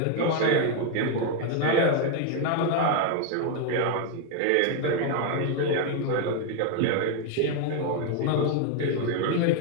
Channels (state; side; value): different; both; correlation 0.01